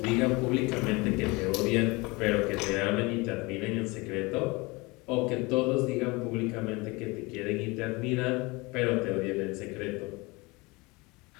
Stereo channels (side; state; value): right; quieter; 24.9 dB